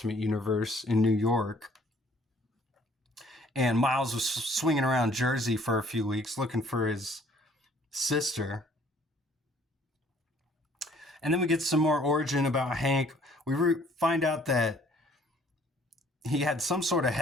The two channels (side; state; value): both; normal; correlation 0.59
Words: Universe in New York. And Miles was swinging around Jersey for a few weeks looking for his sister. And then we get some more origin about Hank. We find out that he had some sort of